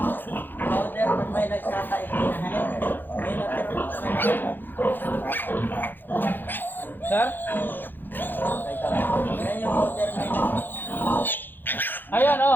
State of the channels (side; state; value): right; late; 0.092 ms